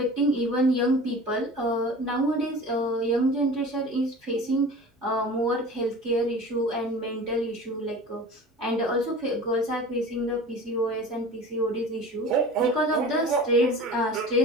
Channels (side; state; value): both; normal; correlation 0.38